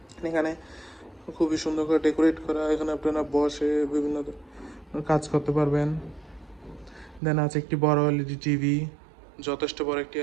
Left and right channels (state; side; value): drops out; left; at 7.2 s